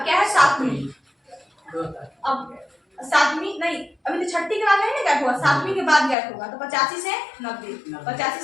क्या है 7वीं, अब 7वीं नहीं, अभी तो छठी के बाद नहीं ना गैप हुआ, 7वीं के बाद गैप होगा, तो 85 से 90, 85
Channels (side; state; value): right; drops out; at 6.2 s